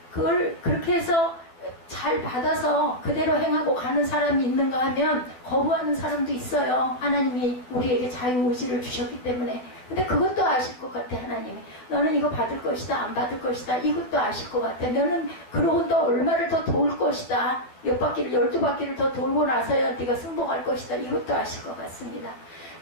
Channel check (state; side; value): late; right; 12 ms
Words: 그걸 그렇게 해서 잘 받아서 그대로 행하고 가는 사람이 있는가 하면 거부하는 사람도 있어요. 하나님이 우리에게 자유의지를 주셨기 때문에. 근데 그것도 아실 것 같아, 하나님이. 너는 이거 받을 것이다, 안 받을 것이다. 이것도 아실 것 같아. 너는 그러고 또 얼마를 더 도울 것이다. 몇 바퀴를, 12바퀴를 더 돌고 나서야 네가 승복할 것이다. 이것도 아실 것 같습니다.